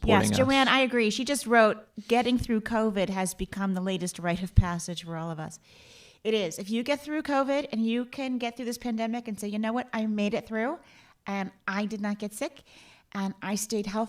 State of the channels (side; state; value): both; identical; correlation 1.00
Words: us. Yes, Joanne, I agree. She just wrote, getting through COVID has become the latest rite of passage for all of us. It is. If you get through COVID and you can get through this pandemic and say, you know what, I made it through and I did not get sick and I stayed